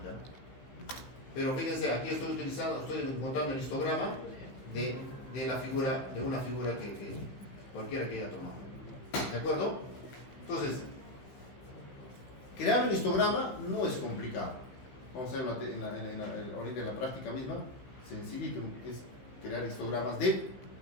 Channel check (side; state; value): right; late; 15 ms